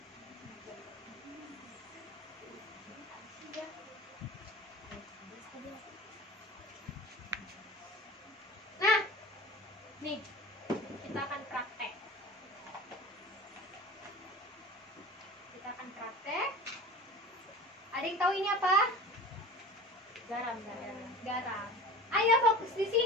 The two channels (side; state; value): both; normal; correlation 0.36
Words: Nah, nih kita akan praktek. Ada yang tahu ini apa? Garam. Garam. Ayo fokus di